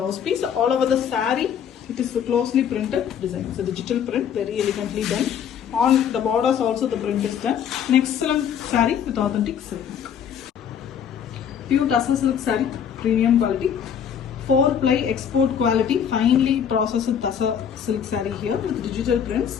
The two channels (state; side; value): quieter; right; 8.2 dB